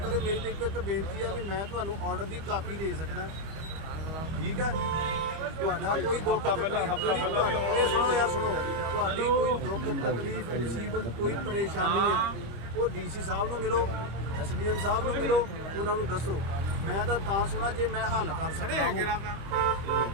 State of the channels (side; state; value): left; late; 25 ms